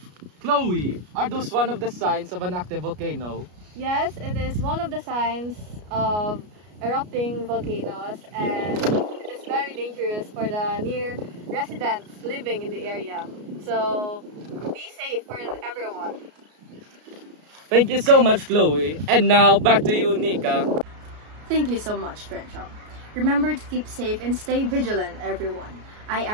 Chloe, are those one of the signs of an active volcano? Yes, it is one of the signs of erupting volcanoes, and it is very dangerous for the near residents living in the area. So be safe for everyone. Thank you so much, Chloe. And now back to you, Nika. Thank you so much, Trencho. Remember to keep safe and stay vigilant, everyone. I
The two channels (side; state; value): left; late; 33 ms